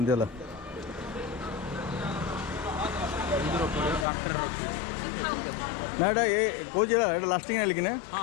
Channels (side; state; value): right; drops out; at 4.0 s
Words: है ना एटा ये कौन एटा लास्टिंग है लेकिन